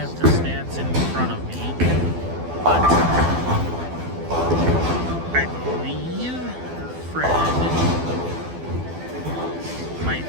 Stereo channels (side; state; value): left; late; 12 ms